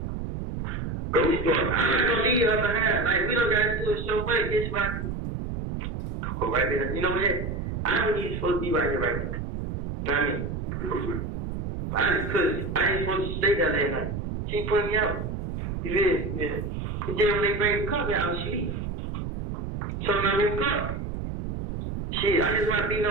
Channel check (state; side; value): noise; right; rumble, 5 dB below the sound